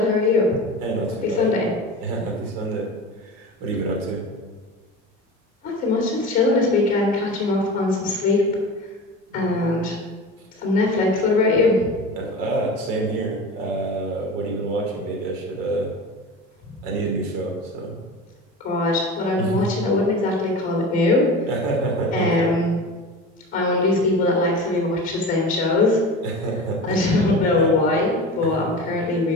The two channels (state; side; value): normal; both; correlation 0.31